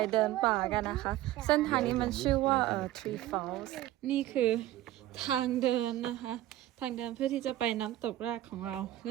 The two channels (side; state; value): left; quieter; 14.5 dB